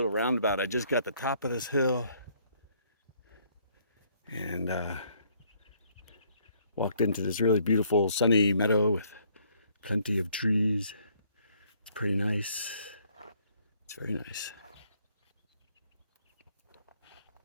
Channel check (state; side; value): inverted; both; correlation -0.65